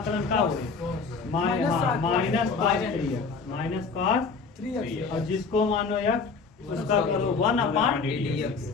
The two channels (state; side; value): quieter; right; 4.9 dB